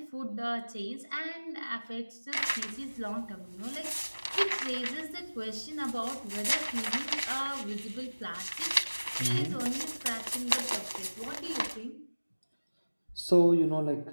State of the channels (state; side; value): inverted; both; correlation -1.00